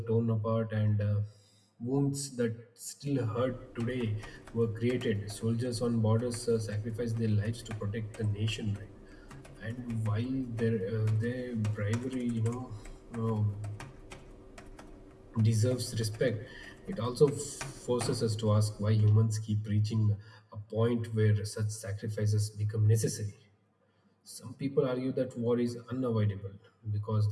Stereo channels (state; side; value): identical; both; correlation 1.00